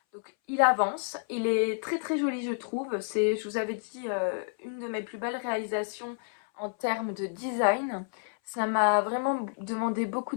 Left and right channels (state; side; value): silent; right; 58 dB below the other